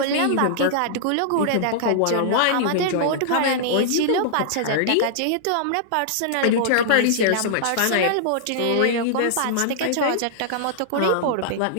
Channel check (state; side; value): different; both; correlation -0.01